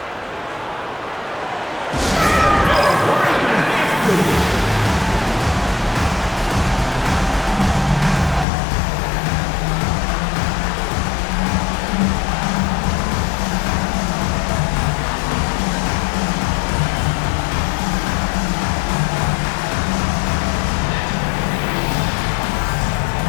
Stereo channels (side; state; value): right; drops out; at 8.5 s